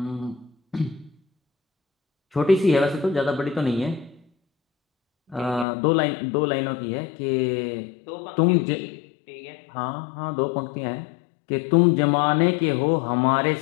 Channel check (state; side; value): drops out; right; at 5.7 s